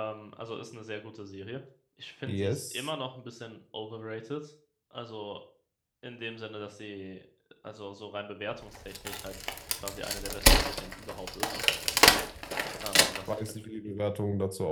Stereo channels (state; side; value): identical; both; correlation 1.00